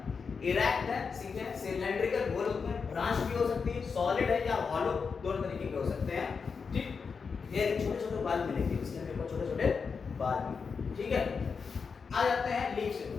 इरेक्ट है, सीधे सिलेंड्रिकल गोल होते हैं, ब्रांच भी हो सकती है, सॉलिड है या हॉलो, दोनों तरीके के हो सकते हैं। ठीक, ये छोटे छोटे बाल मिलेंगे इसके ऊपर, छोटे छोटे बाल भी, ठीक है। आ जाते हैं लीव्स।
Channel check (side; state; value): right; quieter; 5.4 dB